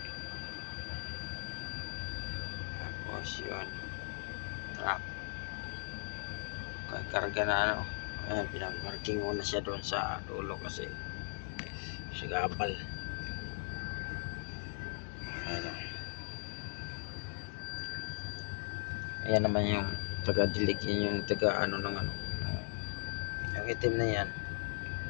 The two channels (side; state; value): right; silent; digital silence